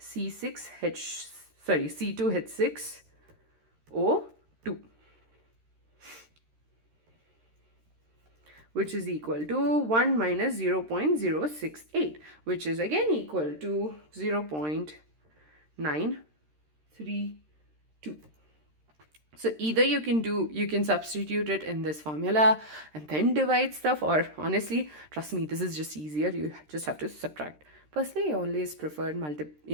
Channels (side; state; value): left; late; 13 ms